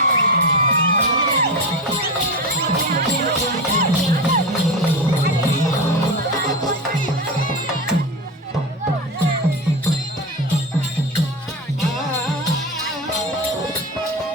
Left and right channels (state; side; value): normal; both; correlation 0.23